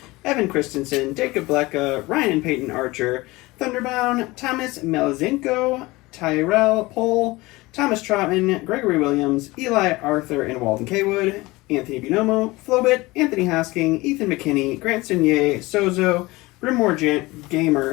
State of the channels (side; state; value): right; quieter; 21.3 dB